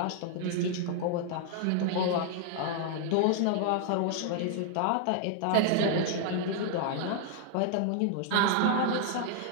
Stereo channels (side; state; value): both; different; correlation 0.00